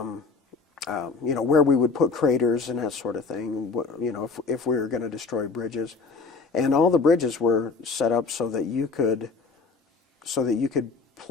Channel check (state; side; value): quieter; right; 4.4 dB